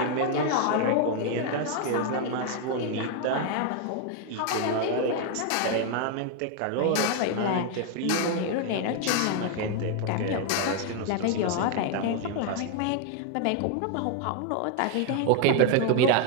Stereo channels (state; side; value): different; both; correlation 0.00